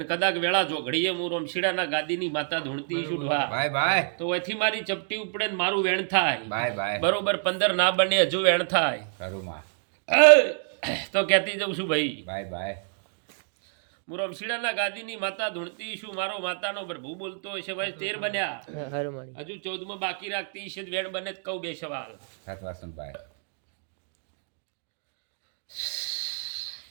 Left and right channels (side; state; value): left; silent; digital silence